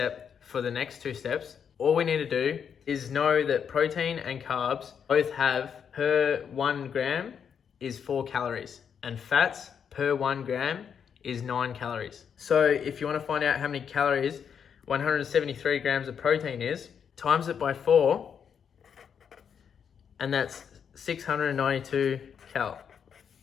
for the next two steps. All we need to do is know that protein and carbs both have per 1 gram is 4 calories, and fats per 1 gram is 9 calories. So if you want to find out how many calories 173 grams of protein is, times it by 4, and that's 692 cal.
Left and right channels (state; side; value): quieter; right; 7.4 dB